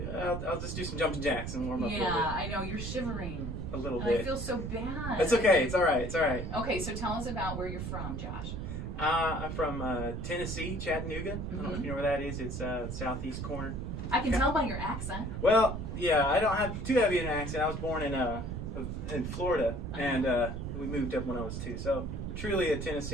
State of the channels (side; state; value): right; noise; rumble, 5 dB below the sound